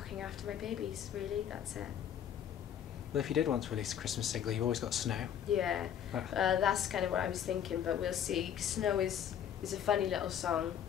after my babies, really. That's it. Well, if you did want to release a Christmas single, you've always got Snow. Yeah, that's kind of what I was thinking, but we'll see. Snow is a funny little song.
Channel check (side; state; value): right; quieter; 9.4 dB